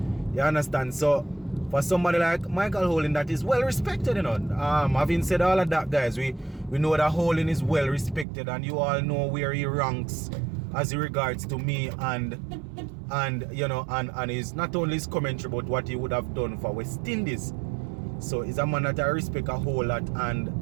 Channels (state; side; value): drops out; left; at 8.2 s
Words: You understand? So for somebody like Michael Holding, that is well respected, you know. Having said all of that, guys, we know that Holding is well respected, and you all know where he ranks as regards to me, and you know, and is not only his commentary but what he would have done for West Indies. So he's a man that I respect a whole lot, and